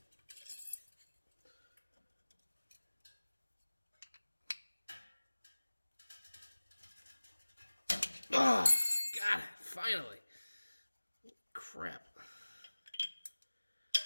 Oh, got it, finally. Crap.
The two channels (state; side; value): inverted; both; correlation -1.00